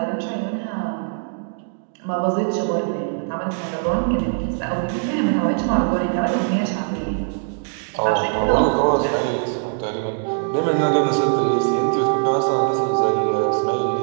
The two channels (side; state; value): left; silent; 65 dB below the other